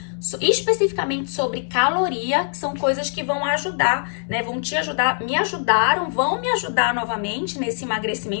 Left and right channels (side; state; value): right; silent; 64 dB below the other